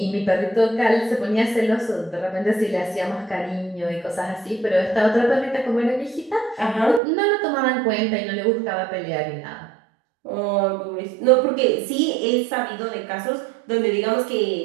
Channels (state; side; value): drops out; left; at 7.0 s